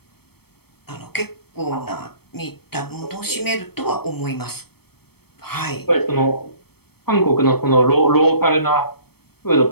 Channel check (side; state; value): right; late; 0.96 ms